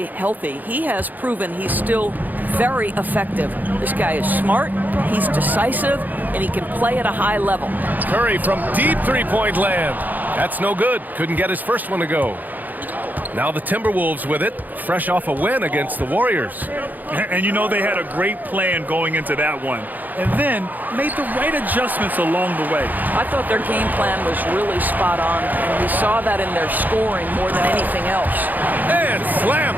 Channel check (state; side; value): late; left; 0.084 ms